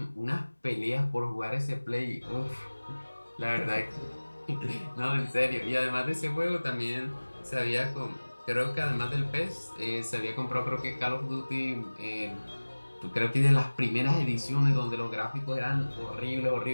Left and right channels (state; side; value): inverted; both; correlation -1.00